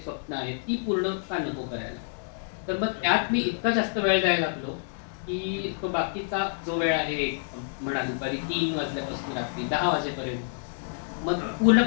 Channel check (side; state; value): right; silent; 57 dB below the other